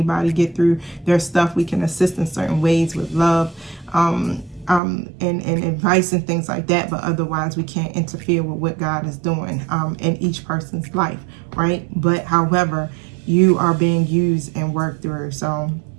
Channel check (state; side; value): drops out; left; at 4.8 s